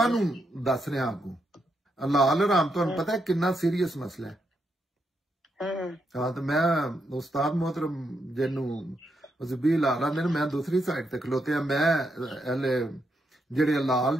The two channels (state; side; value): normal; both; correlation 0.81